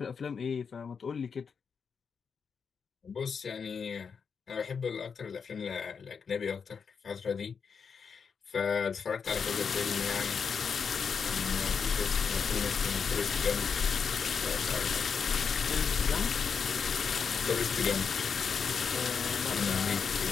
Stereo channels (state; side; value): quieter; right; 6.1 dB